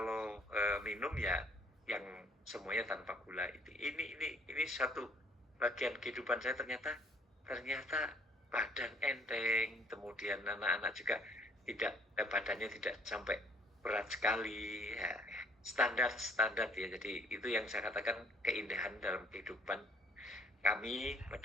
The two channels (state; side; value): normal; both; correlation 0.59